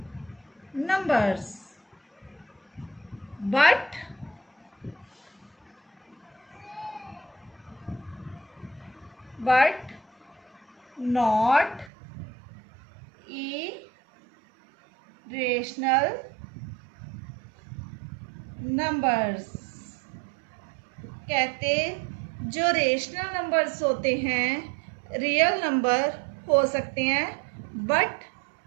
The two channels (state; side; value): drops out; left; at 11.9 s